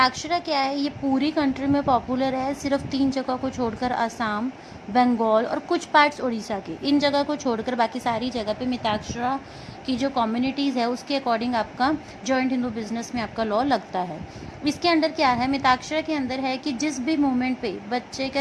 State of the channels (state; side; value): identical; both; correlation 1.00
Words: क्या है? ये पूरी कंट्री में पॉपुलर है, सिर्फ 3 जगह को छोड़कर, असम, बंगाल और कुछ पार्ट्स उड़ीसा के, इन जगह को छोड़कर बाकी सारी जगह पे मिताक्षरा की जो कम्युनिटीज़ है उसके अकॉर्डिंग आपका जॉइंट हिंदू बिजनेस में आपका लॉ लगता है। इसके अंदर क्या है? मिताक्षरा के अंदर है कि जिस भी मोमेंट पे बच्चे